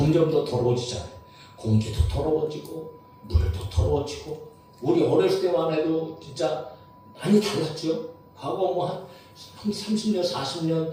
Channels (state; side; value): identical; both; correlation 1.00